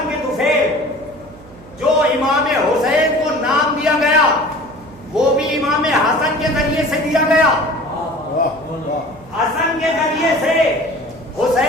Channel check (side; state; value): right; noise; hum, 21 dB below the sound